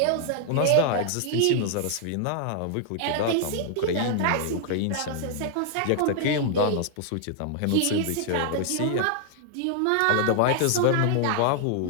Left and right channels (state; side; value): different; both; correlation -0.01